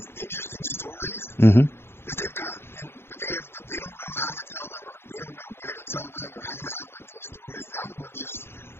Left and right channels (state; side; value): late; right; 0.11 ms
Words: interesting stories that they've got, but they don't know how to tell them, or they don't know where to tell them, or how to outlet those stories. And I would love to just